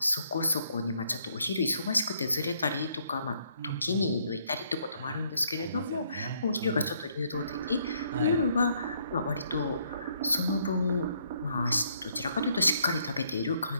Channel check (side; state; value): both; inverted; correlation -0.69